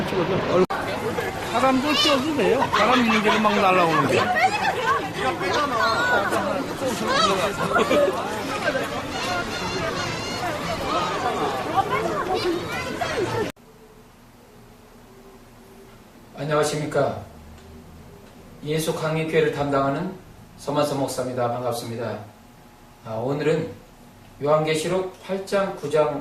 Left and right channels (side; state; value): both; identical; correlation 1.00